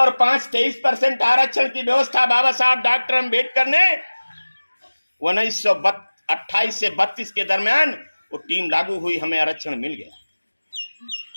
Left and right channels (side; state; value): both; inverted; correlation -1.00